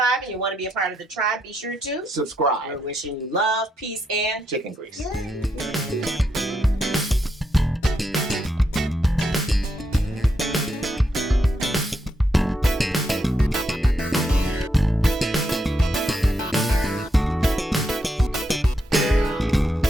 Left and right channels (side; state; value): both; normal; correlation 0.80